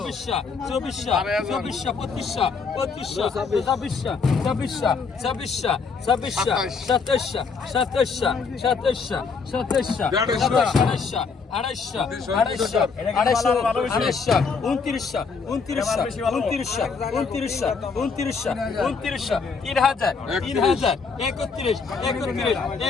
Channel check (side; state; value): right; quieter; 5.1 dB